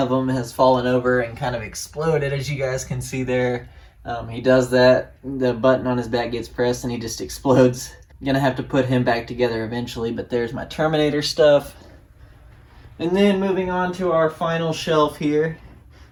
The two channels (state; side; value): identical; both; correlation 1.00